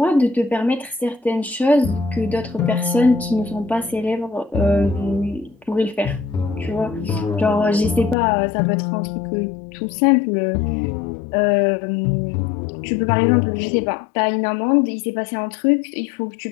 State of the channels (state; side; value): drops out; right; at 8.2 s